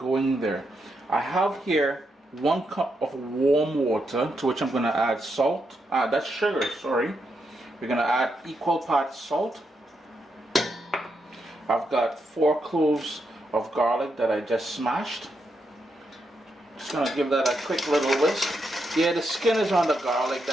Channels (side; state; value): both; normal; correlation 0.82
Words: there. I have here 1 cup of warm water, to which I'm going to add salt. That's sugar, sorry. We're going to add equal parts salt. I've got 4 cloves of garlic that I just smashed. Just going to give that a quick little whisk. Yeah, the skin is on the garlic,